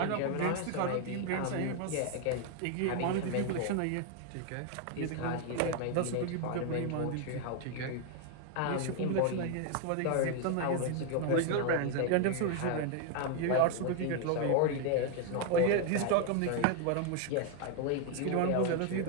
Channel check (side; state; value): both; different; correlation 0.01